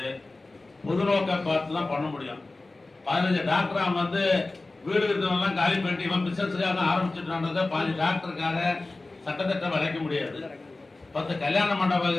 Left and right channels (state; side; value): quieter; right; 3.2 dB